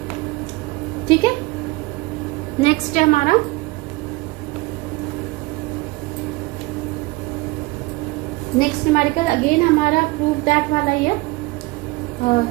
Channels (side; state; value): left; quieter; 22.9 dB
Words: ठीक है। नेक्स्ट है हमारा नेक्स्ट न्यूमेरिकल, अगेन हमारा प्रूफ दैट वाला ही है।